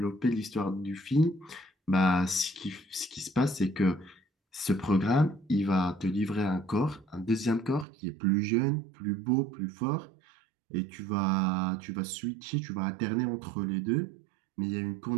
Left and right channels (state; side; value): drops out; left; at 7.9 s